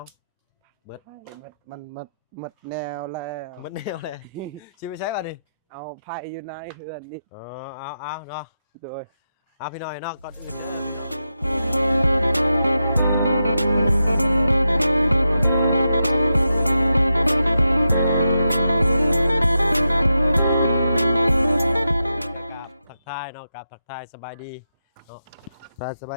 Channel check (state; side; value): inverted; both; correlation -0.88